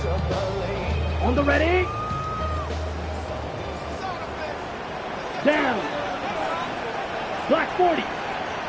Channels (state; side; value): identical; both; correlation 1.00